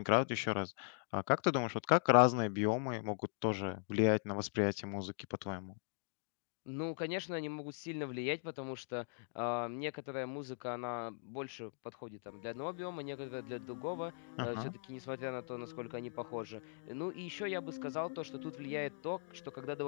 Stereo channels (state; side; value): silent; right; digital silence